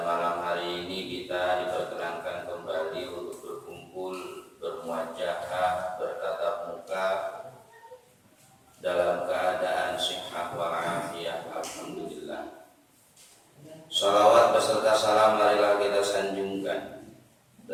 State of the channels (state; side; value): identical; both; correlation 1.00